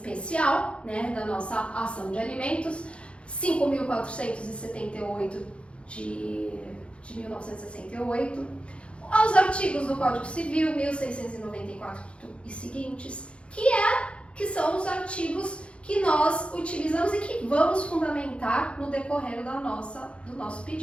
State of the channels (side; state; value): right; late; 0.060 ms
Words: né, da nossa ação de alimentos, 5.478 de 1968, aos artigos do Código Civil, 1694 e seguintes, que são os artigos que nós utilizamos e que vamos fundamentar no decorrer do nosso